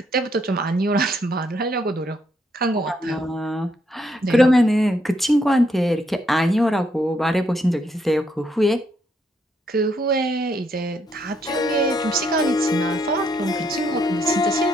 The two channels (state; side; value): normal; both; correlation 0.74